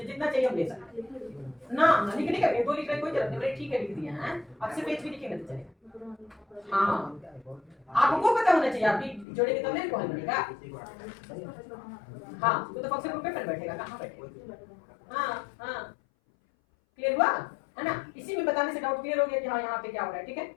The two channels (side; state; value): right; drops out; at 9.2 s